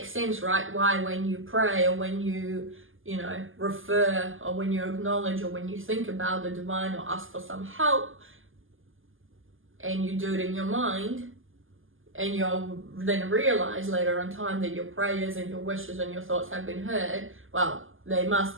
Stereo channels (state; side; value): late; left; 0.59 ms